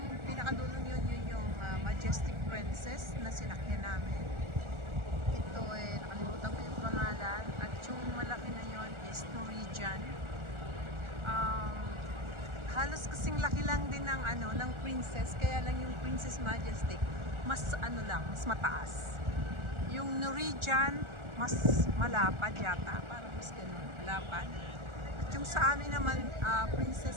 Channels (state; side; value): late; left; 1.4 ms